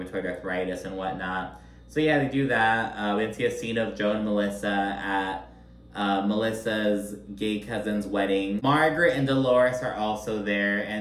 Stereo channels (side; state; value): both; identical; correlation 1.00